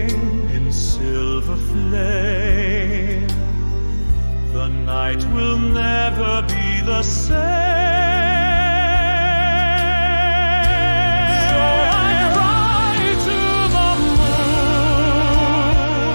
in silver flame. The night will never be the same. So I cry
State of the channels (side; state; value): both; inverted; correlation -1.00